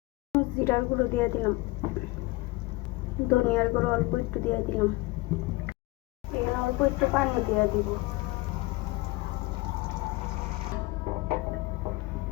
জিরার গুঁড়ো দিয়ে দিলাম, ধনিয়ার গুঁড়ো অল্প একটু দিয়ে দিলাম। এখানে অল্প একটু পানি দিয়ে দিব।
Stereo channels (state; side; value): quieter; right; 21.7 dB